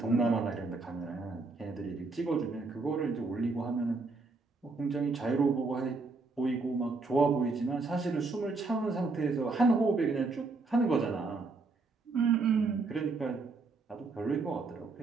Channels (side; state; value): left; quieter; 3.8 dB